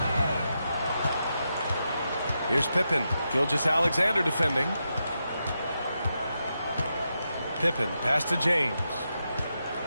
Here's Pippen. Gilgeous-Alexander defending. Pippen, pass to James.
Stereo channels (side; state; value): both; inverted; correlation -0.86